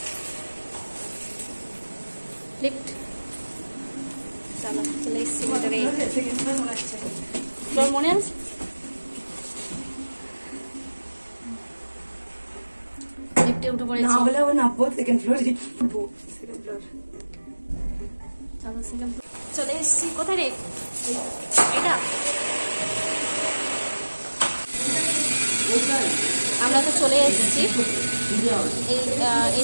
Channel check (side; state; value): both; inverted; correlation -1.00